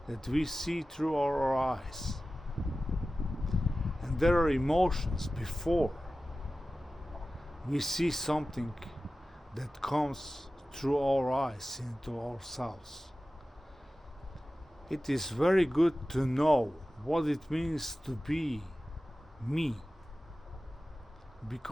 that we see through our eyes, and there are emotions before we see something that comes through our eyes into ourselves. It is very good to know what it means to be me,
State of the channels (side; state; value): both; normal; correlation 0.95